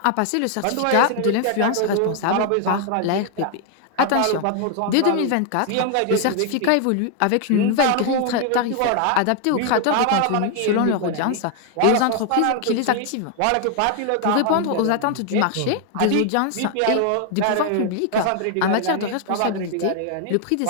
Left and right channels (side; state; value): both; different; correlation 0.00